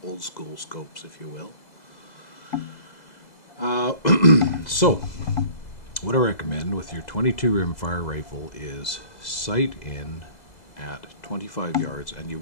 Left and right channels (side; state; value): right; late; 2.0 ms